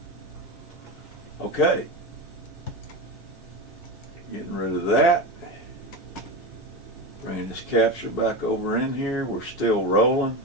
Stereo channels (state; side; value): normal; both; correlation 0.20